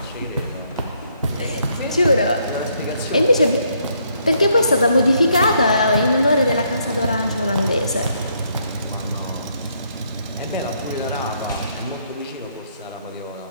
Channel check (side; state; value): both; inverted; correlation -0.72